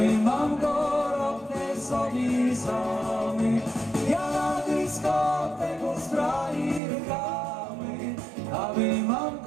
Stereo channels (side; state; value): left; drops out; at 6.8 s